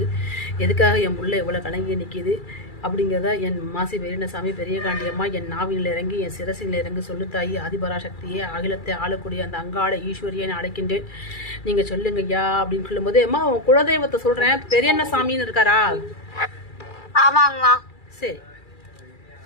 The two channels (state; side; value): late; right; 2.3 ms